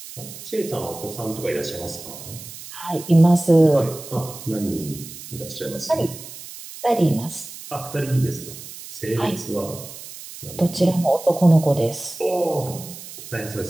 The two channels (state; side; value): noise; right; hiss, 14 dB below the sound